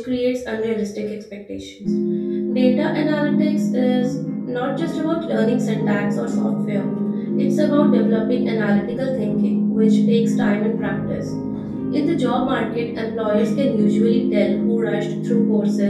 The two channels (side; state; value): both; identical; correlation 1.00